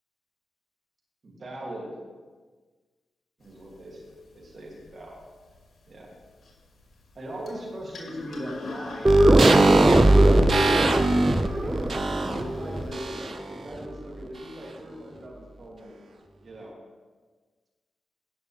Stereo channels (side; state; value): both; normal; correlation 0.95